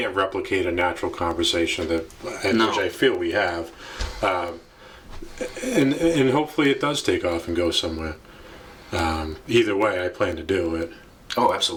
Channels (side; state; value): both; identical; correlation 1.00